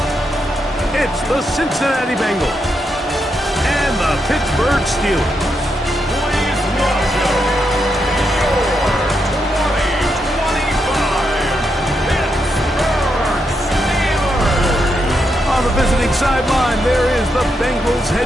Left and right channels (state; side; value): normal; both; correlation 0.82